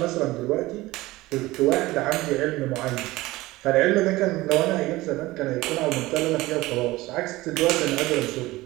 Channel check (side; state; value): left; quieter; 19.0 dB